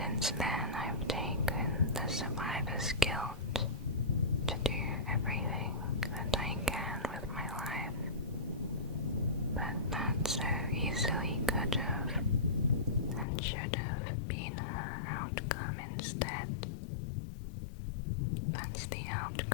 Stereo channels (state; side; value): drops out; right; at 13.2 s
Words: Since then, I've taken the survivor's guilt to do everything that I can with my life. But that so easily could have and should have been her outcome instead. That's the